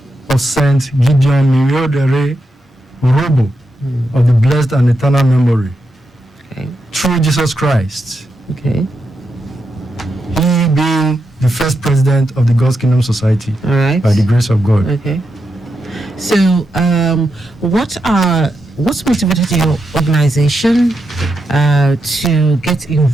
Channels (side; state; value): both; normal; correlation 0.85